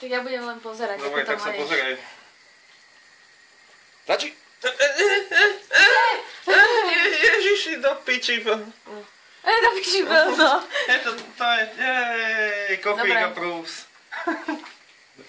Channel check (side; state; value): both; identical; correlation 1.00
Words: ja budem len pozerať, Dobre, ako to tak sa máš. pozeraj. Stačí? Ježiši, do piči. To piči no. To je, coffee Dobre. approves.